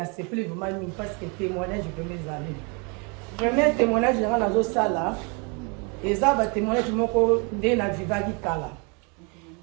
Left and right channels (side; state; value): left; quieter; 32.8 dB